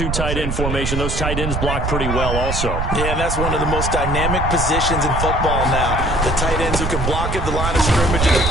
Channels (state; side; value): noise; right; rumble, 2 dB below the sound